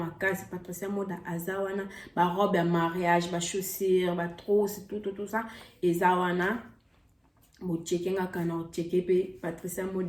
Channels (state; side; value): identical; both; correlation 1.00